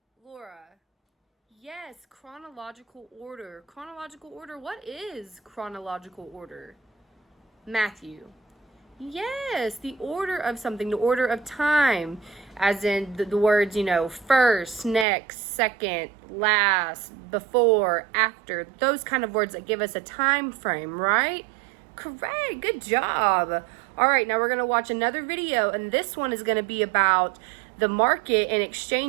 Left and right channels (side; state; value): left; drops out; at 15.1 s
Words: Laura. Yes, chronological order. Chronological order. What is chronological order? Matthew. Yes, the order of something, the order of time, as in the words, first, next, second, last, before, after, those kind of words that give us a time frame, right? Correct, good job. All right, now we're going to watch another video, and this one is going to be about the market and